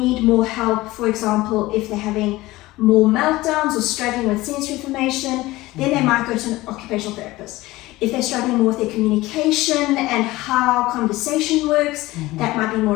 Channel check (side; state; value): right; quieter; 18.7 dB